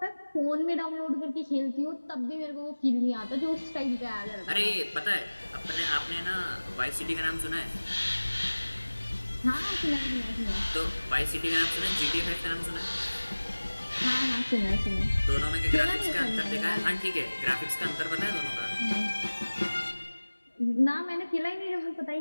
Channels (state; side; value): inverted; both; correlation -1.00